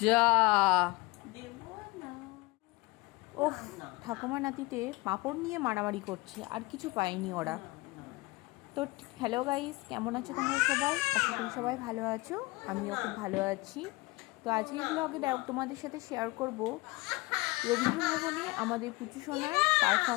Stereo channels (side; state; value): right; quieter; 22.8 dB